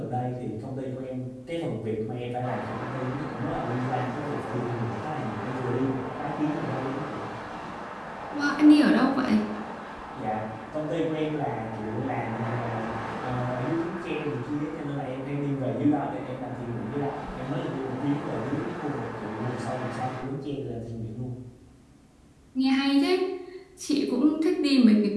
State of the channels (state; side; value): identical; both; correlation 1.00